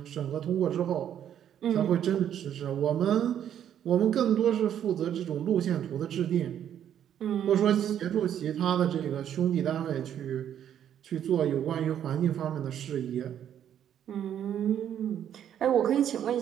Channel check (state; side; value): quieter; left; 9.9 dB